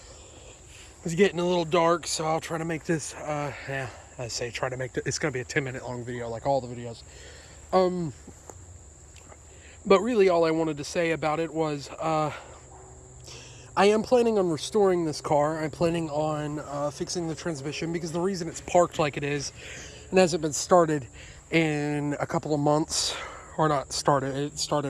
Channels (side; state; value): both; identical; correlation 1.00